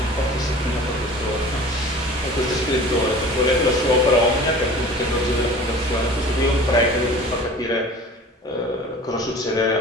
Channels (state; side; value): normal; both; correlation 0.42